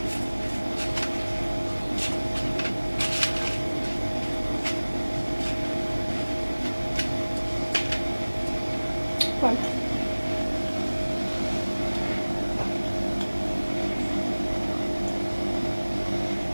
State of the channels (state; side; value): inverted; both; correlation -1.00